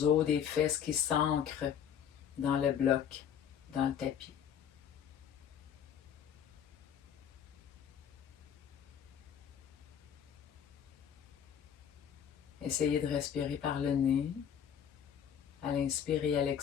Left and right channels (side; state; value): right; quieter; 8.7 dB